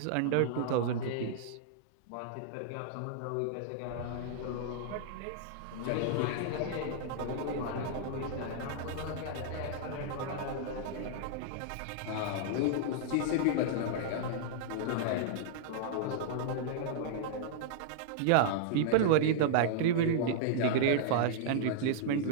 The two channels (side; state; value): both; different; correlation -0.01